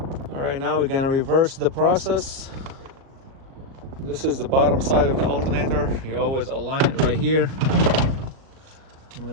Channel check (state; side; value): late; left; 37 ms